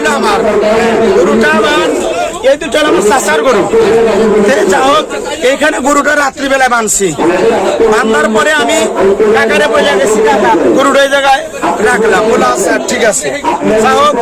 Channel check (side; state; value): both; identical; correlation 1.00